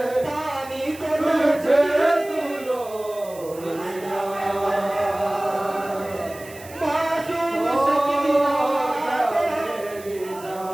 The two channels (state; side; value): noise; right; hiss, 19 dB below the sound